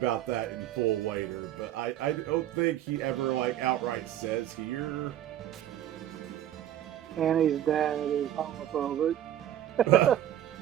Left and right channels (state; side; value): quieter; left; 11.7 dB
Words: that in full later, but I don't think he ever, outright says here. Annie's dad is homophobic.